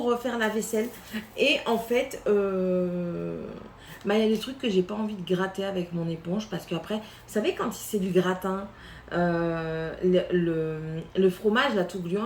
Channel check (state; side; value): identical; both; correlation 1.00